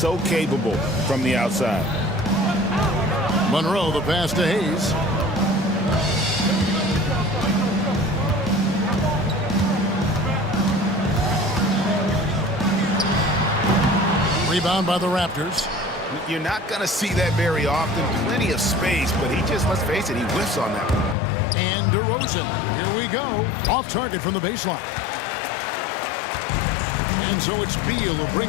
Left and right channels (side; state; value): right; drops out; at 21.2 s